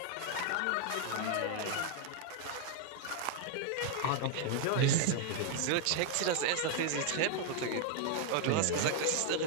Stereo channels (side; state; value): both; different; correlation 0.00